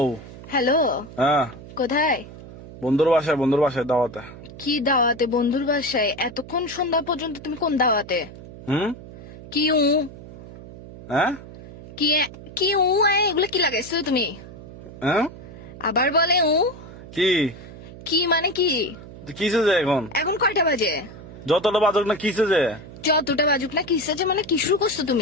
হ্যালো, হ্যাঁ, কোথায়? বন্ধুর বাসায় দাওয়াতে। কি দাওয়াতে? বন্ধুর বাসায়? এতক্ষণ সন্ধ্যা পর্যন্ত তুমি কোন দাওয়াতে? হুম। কি উ হ্যাঁ কি কি উ এগুলো কি লাগাইছো তুমি? হ্যাঁ আবার বলে উ কি কি মানে কি? কিসে যে এখন এখন কয়টা বাজে? যতটা বাজক না কিসে যে যতটা বাজুক না কিসে যে মানে কি শুরু করছো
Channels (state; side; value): noise; right; hum, 16 dB below the sound